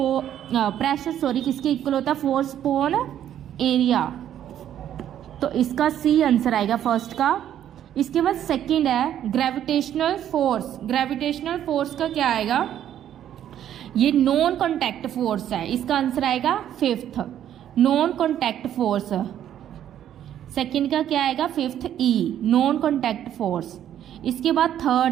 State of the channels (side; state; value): left; quieter; 10.7 dB